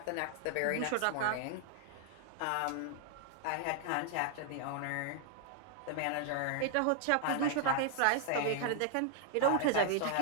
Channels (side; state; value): both; different; correlation 0.00